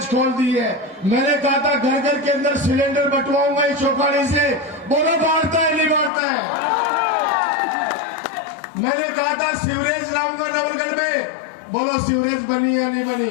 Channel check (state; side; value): drops out; right; at 6.1 s